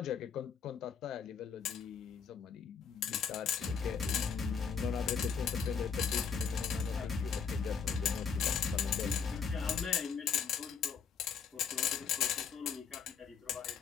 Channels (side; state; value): right; quieter; 6.5 dB